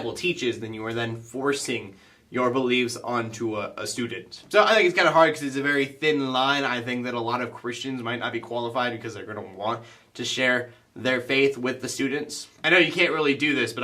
teaches, then you are then forcing your beliefs onto a student. So I think it's kind of hard because it's a very thin line. I think that a lot of Christians might not be qualified because they're going to want to share their faith with the students. I know you can't really do this, but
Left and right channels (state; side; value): identical; both; correlation 1.00